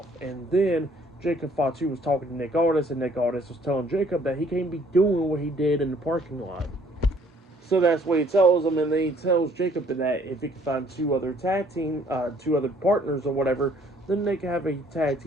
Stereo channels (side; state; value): both; normal; correlation 0.61